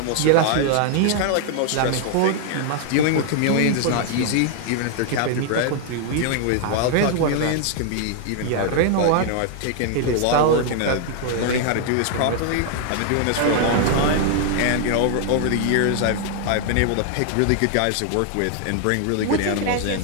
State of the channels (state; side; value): different; both; correlation 0.00